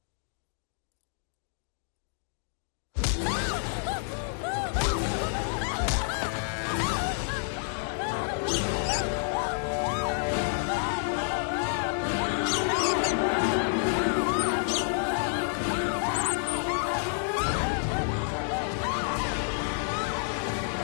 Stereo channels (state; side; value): silent; right; digital silence